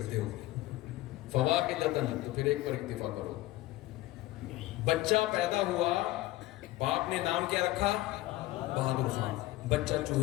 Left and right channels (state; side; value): quieter; right; 17.3 dB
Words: ہو، فَوَاحِدَةً، تو پھر ایک پر اکتفا کرو۔ بچہ پیدا ہوا، باپ نے نام کیا رکھا؟ بہادر خان۔ بچہ